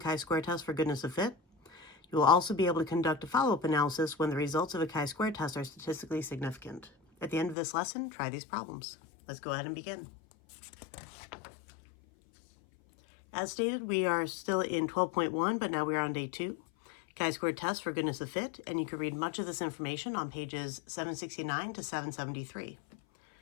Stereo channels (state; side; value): drops out; right; at 7.6 s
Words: test for goodness of fit. You will also be able to conduct a follow-up analysis when the results of a chi-square test are statistically significant. At the end of this lesson, try these problems. Let's go ahead and begin. As stated, we are still in 12.1, but now we are on day 2. Chi-square test for goodness of fit, and you can read much of this information on pages 769 to 773.